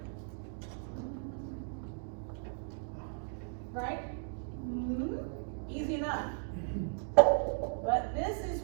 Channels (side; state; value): left; silent; digital silence